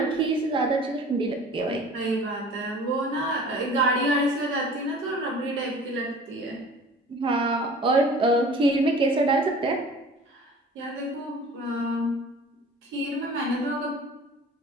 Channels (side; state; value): both; normal; correlation 0.45